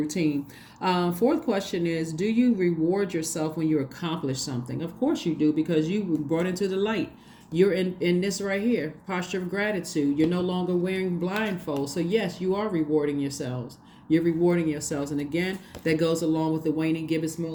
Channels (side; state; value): both; identical; correlation 1.00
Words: Fourth question is, do you reward yourself when you accomplish something? Of course you do, because you were brought into the light. You're in this right here, posture of gratitude. You're no longer wearing blindfolds. So yes, you are rewarding yourselves. You're rewarding yourselves. And again, that goes along with the waning gibbous